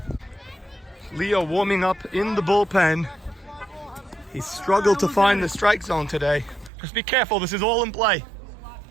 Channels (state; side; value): drops out; left; at 6.7 s